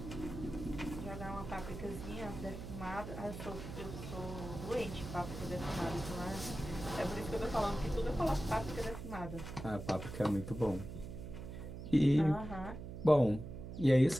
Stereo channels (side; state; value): right; noise; hum, 9 dB below the sound